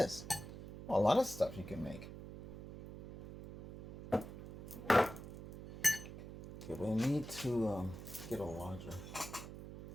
Well, a lot of stuff you can make. Okay, we need to get a larger.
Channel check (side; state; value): right; noise; hum, 12 dB below the sound